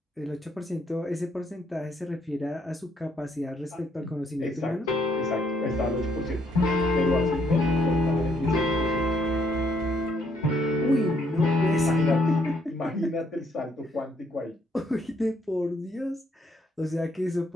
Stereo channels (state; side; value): normal; both; correlation 0.70